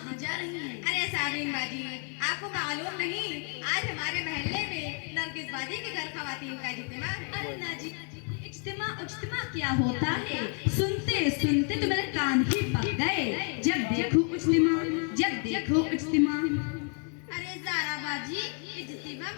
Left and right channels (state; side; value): quieter; right; 39.7 dB